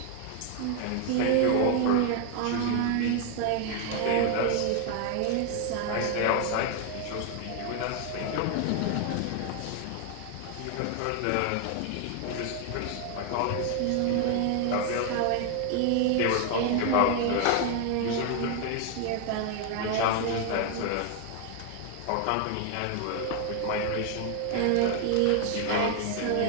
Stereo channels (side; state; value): both; different; correlation 0.00